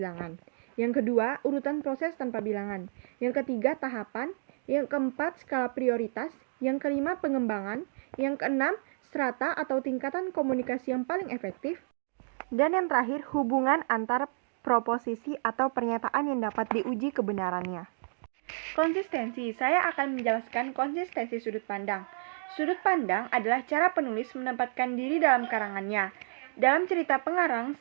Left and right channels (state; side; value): silent; left; digital silence